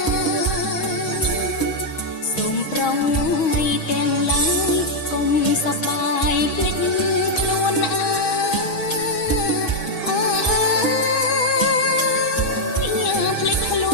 សូមប្រងថ្ងៃទាំងឡាយកុំសប្បាយភ្លេចខ្លួនភ្លេចខ្ល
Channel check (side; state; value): right; late; 6.3 ms